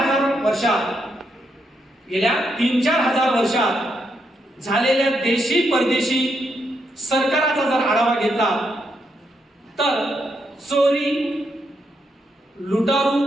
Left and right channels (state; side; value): normal; both; correlation 0.79